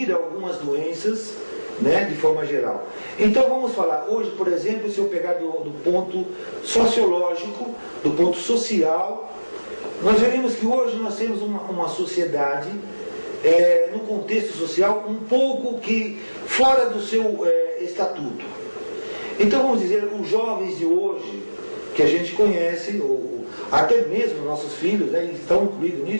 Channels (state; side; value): inverted; both; correlation -1.00